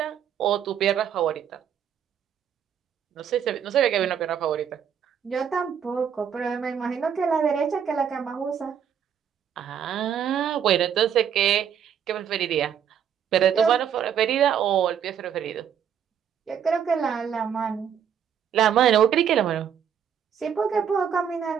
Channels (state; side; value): quieter; left; 8.4 dB